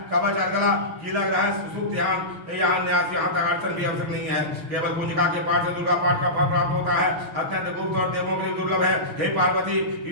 कवच अर्गला कीलक रहस्य सुख ध्यान यहाँ न्यास यहाँ तक अड़चन भी आवश्यक नहीं है। केवल पूंजिका के पाठ से दुर्गा पाठ का फल प्राप्त होता है। अत्यंत गुप्त और देवों के लिए दुर्लभ है। हे पार्वती,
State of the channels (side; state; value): left; late; 6.2 ms